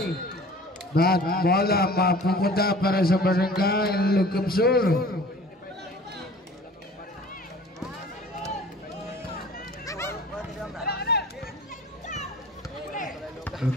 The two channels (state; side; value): normal; both; correlation 0.46